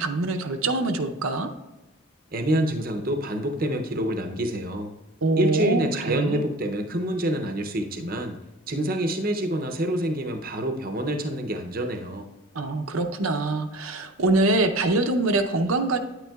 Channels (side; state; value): both; normal; correlation 0.41